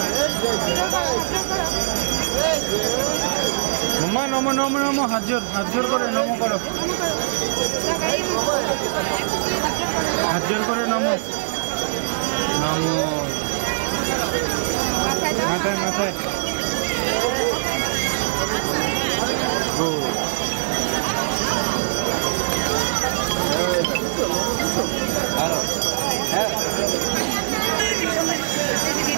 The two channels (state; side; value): silent; left; digital silence